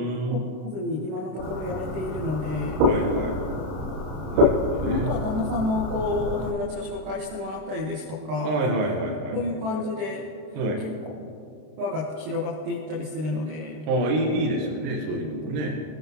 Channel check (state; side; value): late; left; 33 ms